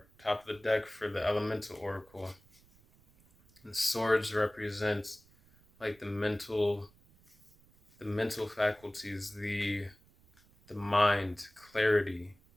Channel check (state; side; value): noise; right; rumble, 29 dB below the sound